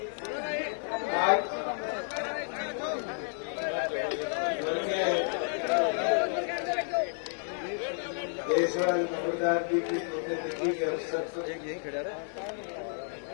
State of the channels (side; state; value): right; silent; 57 dB below the other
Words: देशवाल नंबरदार जी की पुण्यतिथि के अवसर पर